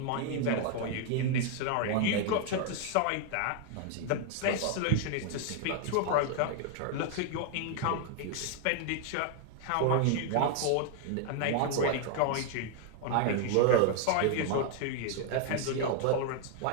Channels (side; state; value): both; different; correlation 0.00